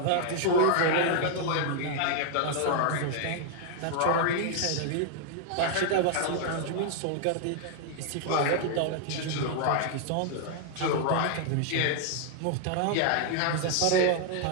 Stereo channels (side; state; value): both; different; correlation 0.00